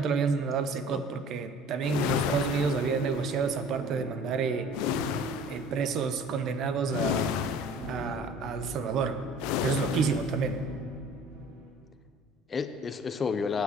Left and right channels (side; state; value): both; normal; correlation 0.47